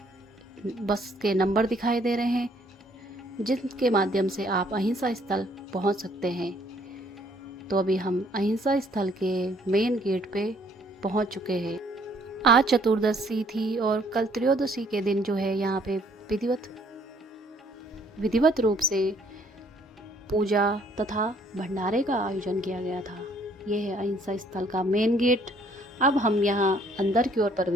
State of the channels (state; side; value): normal; both; correlation 0.63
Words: बस के नंबर दिखाई दे रहे हैं जिनके माध्यम से आप अहिंसा स्थल पहुंच सकते हैं। तो अभी हम अहिंसा स्थल के मेन गेट पे पहुंच चुके हैं। आज चतुर्दशी थी और कल त्रयोदशी के दिन जो है यहाँ पे विधिवत रूप से पूजा तथा भंडारे का आयोजन किया गया था। यह है अहिंसा स्थल का मेन गेट। अब हम यहाँ अंदर की ओर